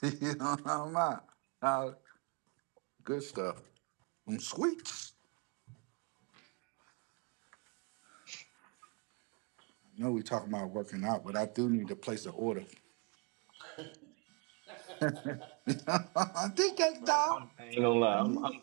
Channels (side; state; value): left; quieter; 33.4 dB